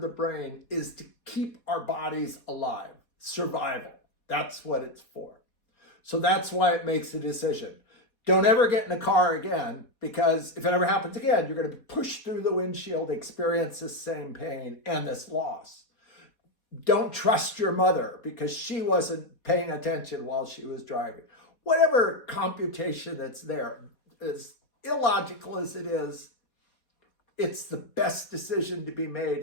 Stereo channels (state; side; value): late; right; 4.2 ms